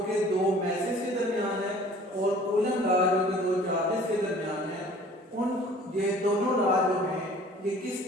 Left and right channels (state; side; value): normal; both; correlation 0.50